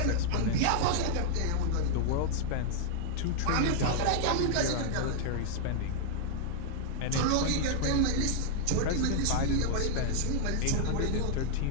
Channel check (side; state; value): both; different; correlation -0.01